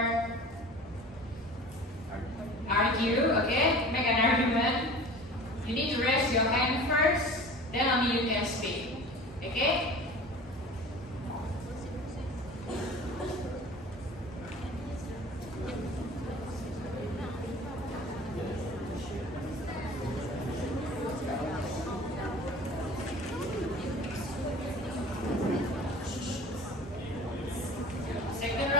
argue, okay, make an argument, you need to raise your hand first, then only you can speak, okay? Second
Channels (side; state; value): both; normal; correlation 0.40